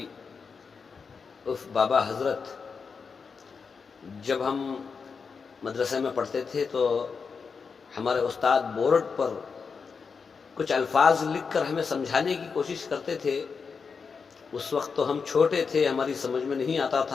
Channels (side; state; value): right; quieter; 5.4 dB